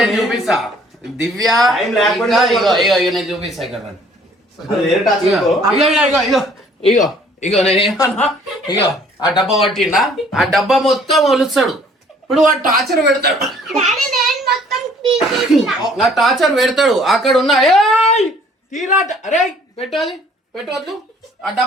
చూపిస్తా దివ్య Time లేకుండా ఇగో నేను చూపిస్తా ఇక్కడ అది వేరే టాచ్ ఇగో ఇగో ఇగో నేనేమన్నా ఇగో ఆ డబ్బా పట్టిండా ఆ డబ్బా మొత్తం ఒలుస్తాడు ఇప్పుడు వాడు టార్చర్ పెడతాడు నా టార్చర్ పెడతాడు అక్కడ ఉన్న ఏయ్ తీరాట అరే పెట్టు అది పెట్టవద్దు ఆ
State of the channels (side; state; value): both; normal; correlation 0.58